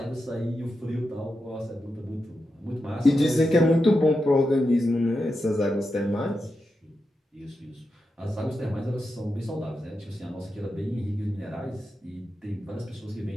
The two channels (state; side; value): normal; both; correlation 0.88